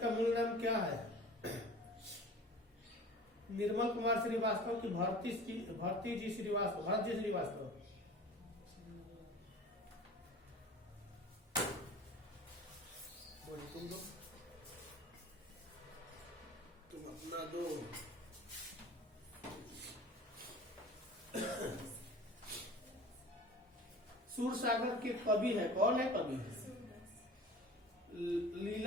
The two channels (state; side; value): normal; both; correlation 0.41